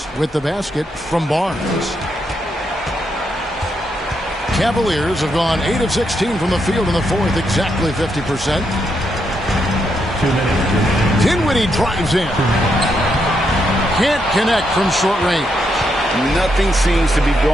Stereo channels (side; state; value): both; normal; correlation 0.80